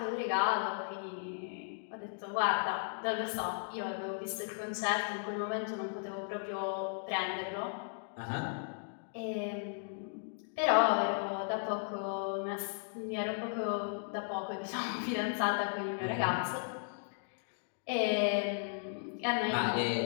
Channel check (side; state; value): right; silent; digital silence